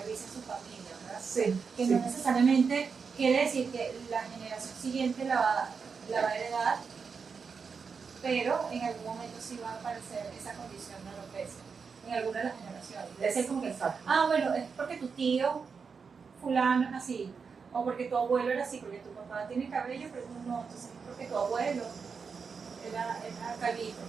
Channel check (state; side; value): quieter; left; 5.5 dB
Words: en su familia, ¿verdad? Sí. Que no necesariamente quiere decir que la generación siguiente la va a heredar, pero en algún momento sí va a aparecer esa condición de alopecia, en alguna de las generaciones. Debe ser como que, bueno, es porque tu tío fulano es así, o porque tu abuelo era así, porque tu papá tiene cabello, pero no, entonces es porque tu abuelo era calvito.